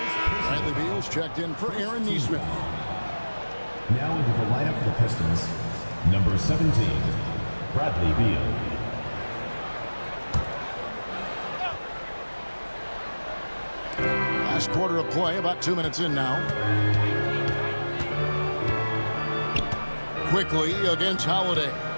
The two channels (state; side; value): inverted; both; correlation -1.00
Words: Bradley Beal's checked in for Aaron Nesmith. Now into the lineup for the Pistons, number 17, Bradley Beal. Last quarter of play, about 2 minutes in now. Quickly against Holiday.